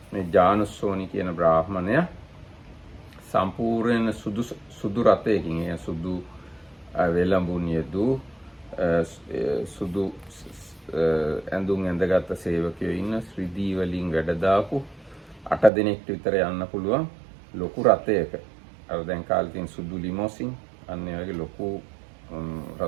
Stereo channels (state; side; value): drops out; left; at 15.7 s